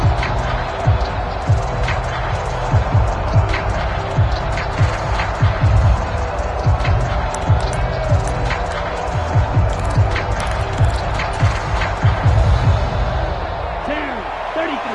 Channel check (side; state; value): both; identical; correlation 1.00